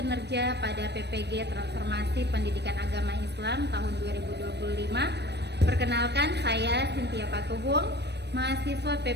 pada PPG Transformasi Pendidikan Agama Islam tahun 2025. Perkenalkan, saya Cynthia Patuhung, mahasiswa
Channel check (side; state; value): left; late; 0.49 ms